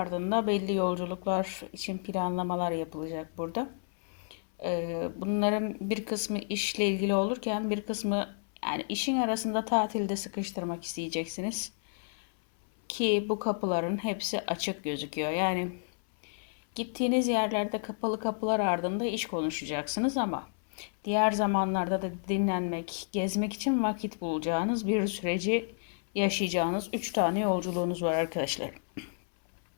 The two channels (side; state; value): right; silent; 57 dB below the other